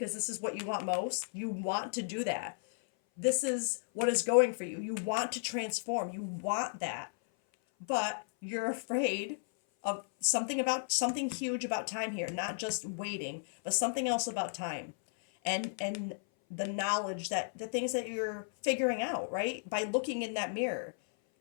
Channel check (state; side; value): silent; right; 55 dB below the other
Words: this is what you want most. You want to do that. This is what is going for you. You want to transform. You want that. But you're afraid of something huge about time here, not just waiting, but something else about time. And the knowledge that the things that you're figuring out, right? By looking in that mirror,